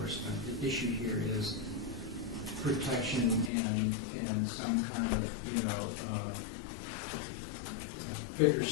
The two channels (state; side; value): drops out; right; at 3.5 s